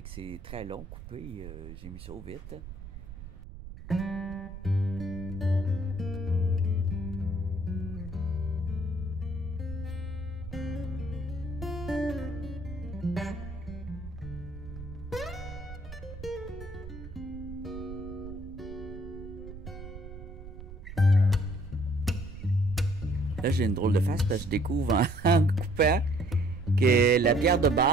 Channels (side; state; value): right; noise; rumble, 12 dB below the sound